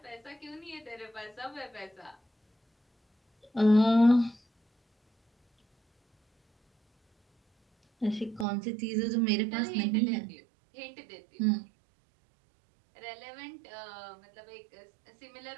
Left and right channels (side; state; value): left; drops out; at 8.5 s